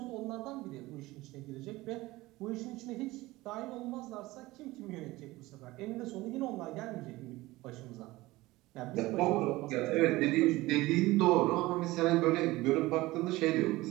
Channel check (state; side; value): quieter; left; 19.3 dB